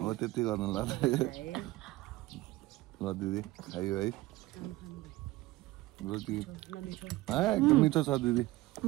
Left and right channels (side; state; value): left; quieter; 18.2 dB